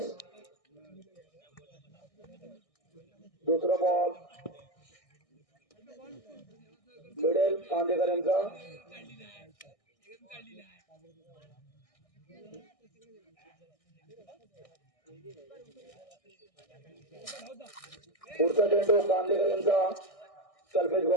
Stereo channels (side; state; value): right; late; 1.6 ms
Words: दुसरा बॉल मिळेल कांदेकर यांचा. पुढचा चेंडू कांदेकर यांचा कल्पेश